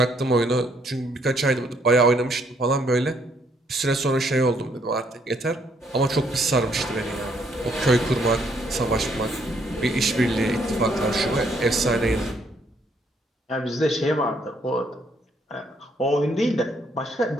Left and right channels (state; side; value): normal; both; correlation 0.69